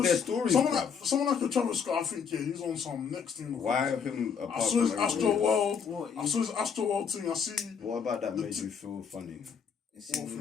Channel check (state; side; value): quieter; right; 6.6 dB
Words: their stories, Someone bruv. like a Travis Scott, I think, yeah, he's on some next thing. Why him I apart saw from his everybody Astro else? World. What, I saw his Astro World thing. I see. What about that The made t- you feel funny?